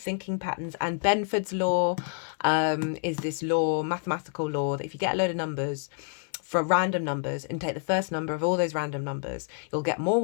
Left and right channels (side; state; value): right; silent; 59 dB below the other